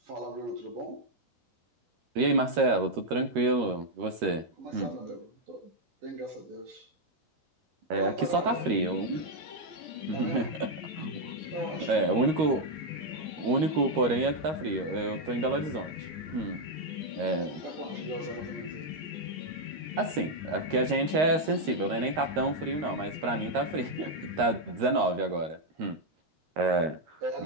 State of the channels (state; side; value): late; left; 13 ms